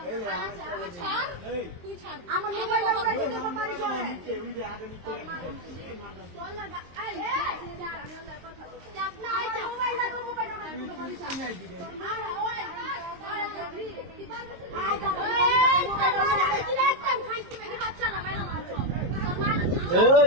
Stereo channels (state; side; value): late; left; 23 ms